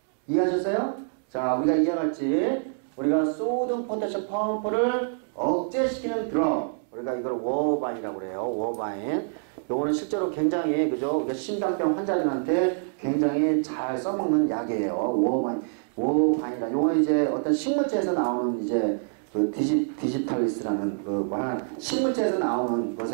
이해하셨어요? 자, 우리가 이해와 같이 우리가 소듐 포타슘 펌프를 억제시키는 드럭, 우리가 이걸 워바인이라고 그래요. 워바인. 요거는 실제로 굉장히, 그죠? 심장병 환자들한테 굉장히 잘 써먹는 약이에요. 워바인이라. 요거는 이제 어떤 식물체에서 나오는 이제 그 디지털리스라는 식물체에서 나오는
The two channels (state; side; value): silent; left; digital silence